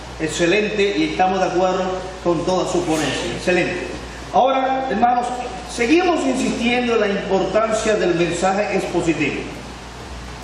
excelente, y estamos de acuerdo con toda su ponencia, excelente. Ahora, hermanos, seguimos insistiendo en la importancia del mensaje expositivo.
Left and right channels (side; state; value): both; identical; correlation 1.00